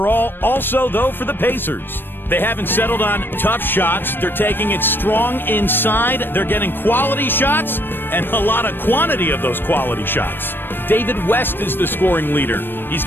also, though, for the Pacers. They haven't settled on tough shots. They're taking it strong inside. They're getting quality shots and a lot of quantity of those quality shots. David West is the scoring leader. He's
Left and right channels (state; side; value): late; right; 0.097 ms